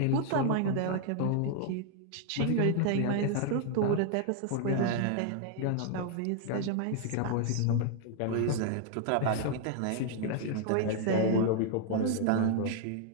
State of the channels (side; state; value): both; different; correlation 0.00